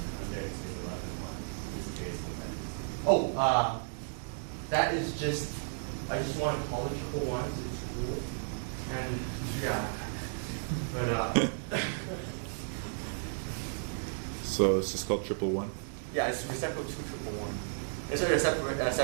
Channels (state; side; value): silent; left; digital silence